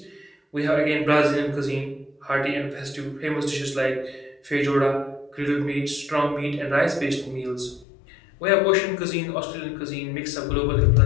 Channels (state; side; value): drops out; right; at 7.9 s